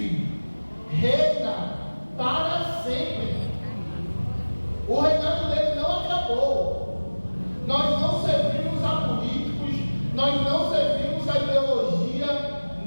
reina para sempre. O reinado dele não acabou. Nós não servimos a políticos, nós não servimos a ideologia,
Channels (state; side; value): inverted; both; correlation -1.00